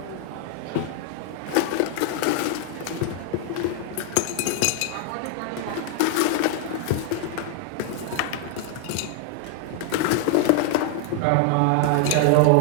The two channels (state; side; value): different; both; correlation 0.00